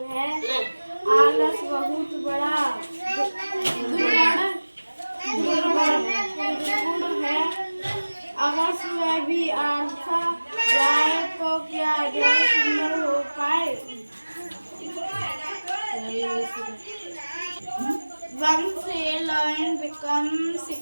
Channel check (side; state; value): both; inverted; correlation -1.00